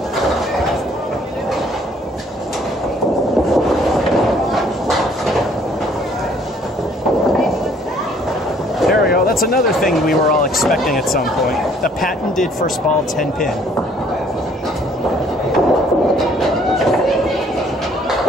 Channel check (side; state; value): both; normal; correlation 0.60